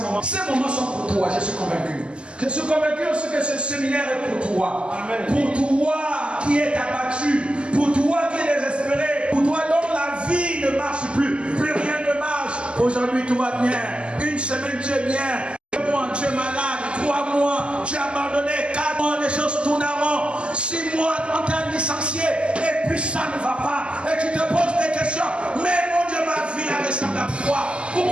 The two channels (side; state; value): left; late; 0.052 ms